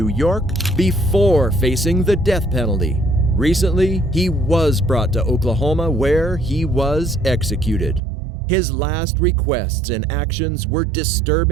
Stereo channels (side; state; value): left; drops out; at 8.0 s